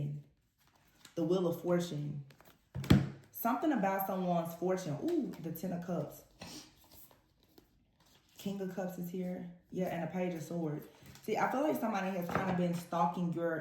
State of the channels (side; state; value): both; identical; correlation 1.00